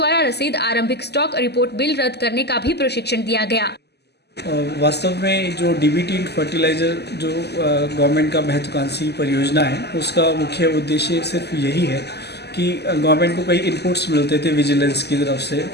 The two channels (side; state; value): right; late; 0.49 ms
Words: रसीद, आरंभिक स्टॉक रिपोर्ट, बिल रद्द करने का भी प्रशिक्षण दिया गया। वास्तव में जो डीबीटी फर्टिलाइजर जो गवर्नमेंट का महत्वाकांक्षी परियोजना है, उसका मुख्य उद्देश्य सिर्फ यही है कि गवर्नमेंट को कई इनपुट्स मिलते थे विजिलेंस की तरफ से,